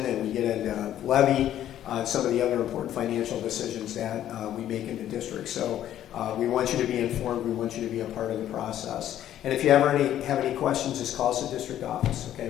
and we get into levy, some of the other important financial decisions that we make in the district. So we want you to be informed. We want you to be a part of the process. And if you ever have any questions, just call us at district office. Okay,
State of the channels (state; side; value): quieter; right; 11.6 dB